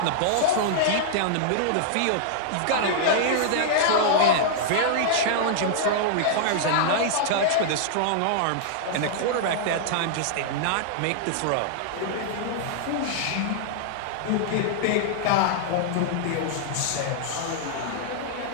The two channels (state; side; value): different; both; correlation -0.01